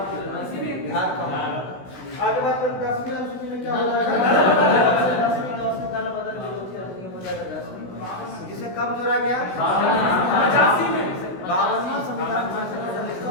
बिहार का मामला। आगे बात करें 10वीं अनुसूची में क्या हो जाएगा? 10वीं दल बदल विरोधी अधिनियम हो जाएगा 10वीं, जिसे कब जोड़ा गया? 52वां संविधान संशोधन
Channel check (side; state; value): right; late; 16 ms